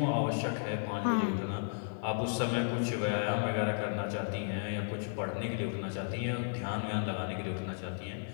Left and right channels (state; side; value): silent; right; digital silence